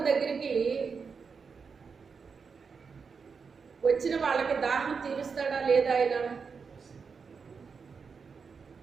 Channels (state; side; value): quieter; left; 5.5 dB